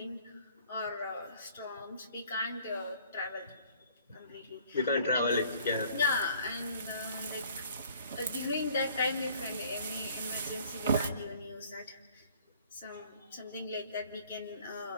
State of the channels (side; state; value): both; inverted; correlation -0.56